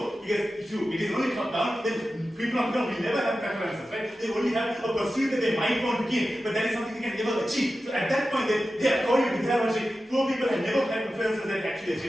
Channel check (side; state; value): both; normal; correlation 0.93